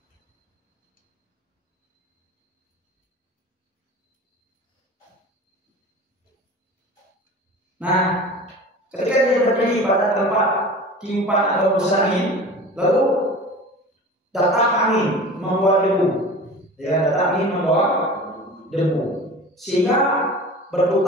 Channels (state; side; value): normal; both; correlation 0.37